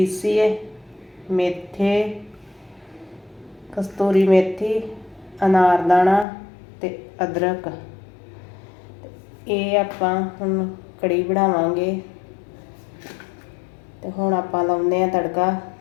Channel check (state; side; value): drops out; right; at 6.2 s